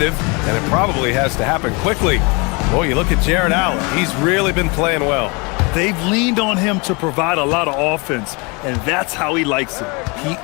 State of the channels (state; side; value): quieter; right; 29.4 dB